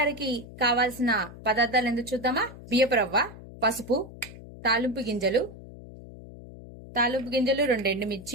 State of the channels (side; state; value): left; noise; hum, 16 dB below the sound